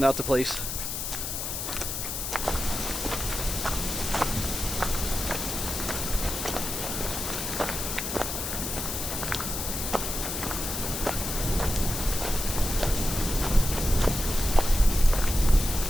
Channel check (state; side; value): noise; left; hiss, 4 dB below the sound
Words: out the place.